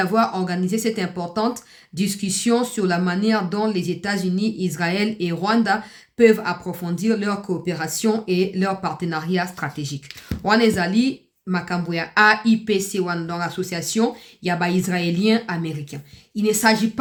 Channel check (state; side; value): identical; both; correlation 1.00